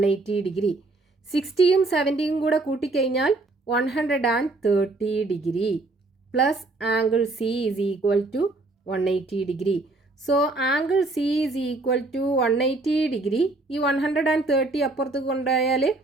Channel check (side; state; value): left; quieter; 3.2 dB